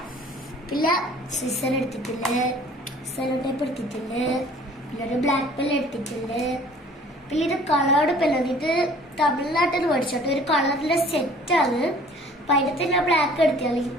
പിന്നെ സിസർ എടുത്തിട്ടുണ്ട്, സെലോ ടേപ്പ് എടുത്തിട്ടുണ്ട്, പിന്നെ ഒരു ബ്ലാക്ക് പെൻ എടുത്തിട്ടുണ്ട്. പിന്നെ ഇത് കളേർഡ് പെല്ലാണ്. ഇത് തമിഴ്നാട്ടിൽ നിന്ന് മേടിച്ചോട്ടെ, ഒരു കളറിലെ സെറ്റാണ്. അപ്പൊ അതിനകത്ത് ഞാൻ ബ്ലാക്ക് എടുത്താൽ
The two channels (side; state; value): both; normal; correlation 0.52